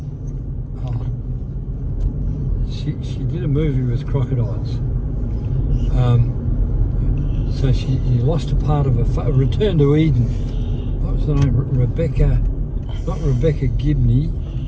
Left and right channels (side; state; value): both; identical; correlation 1.00